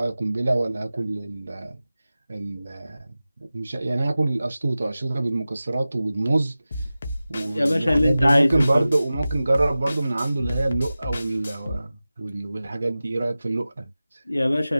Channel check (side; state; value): both; inverted; correlation -0.96